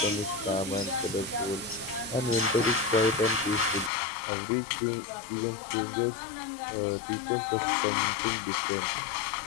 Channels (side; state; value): right; drops out; at 3.9 s